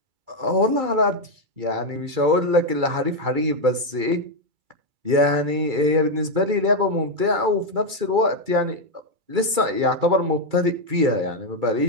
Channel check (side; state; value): left; late; 2.3 ms